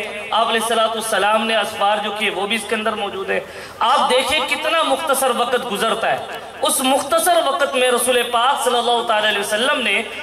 آپ علیہ السلام نے اسفار جو کیے وہ بھی اس کے اندر موجود ہے۔ آپ دیکھیں کتنا مختصر وقت گزرتا ہے، اس مختصر وقت میں رسول پاک صلی اللہ علیہ وسلم نے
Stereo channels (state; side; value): identical; both; correlation 1.00